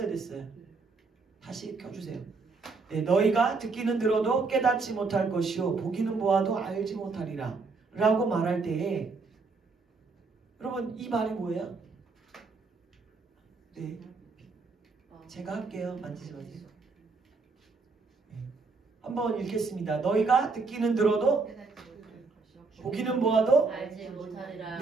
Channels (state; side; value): quieter; left; 4.2 dB